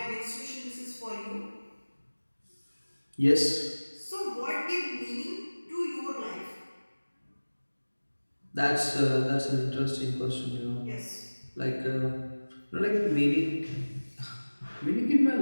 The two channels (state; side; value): inverted; both; correlation -1.00